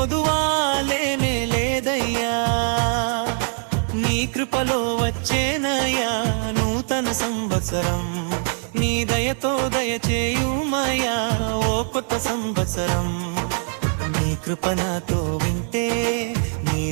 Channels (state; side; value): silent; left; 55 dB below the other